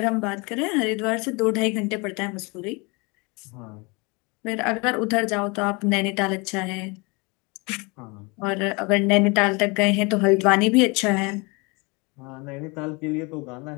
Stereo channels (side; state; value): right; quieter; 28.4 dB